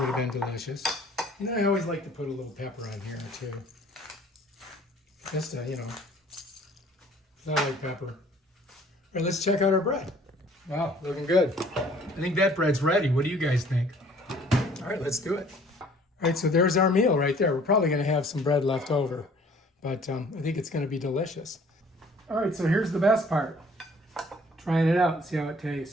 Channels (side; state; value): both; normal; correlation 0.55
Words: have been delicious. You know, I always like to put a little pepper on here too. Just to, you know. I like pepper. All right, let's check out our bread. Wow, looking good. I think that bread's ready. What do you guys think? All right, let's do it. All right, so there's our meal right there. We're probably gonna have some bread left over, but I think it's gonna be delicious. All right, so here's the best part. Trying it out and see how it